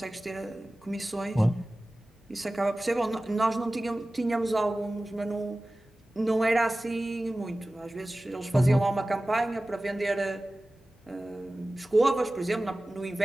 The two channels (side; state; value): both; normal; correlation 0.97